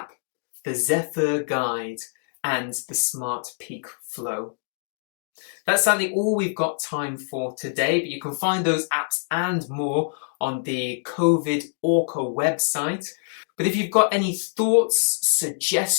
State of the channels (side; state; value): right; silent; digital silence